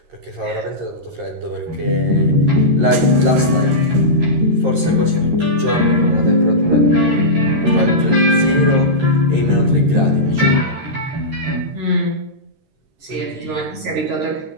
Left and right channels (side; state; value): left; late; 13 ms